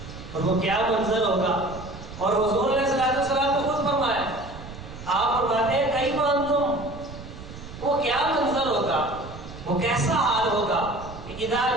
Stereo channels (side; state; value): right; noise; rumble, 13 dB below the sound